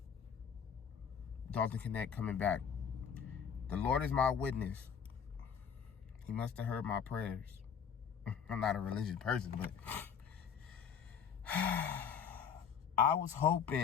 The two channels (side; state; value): right; quieter; 7.3 dB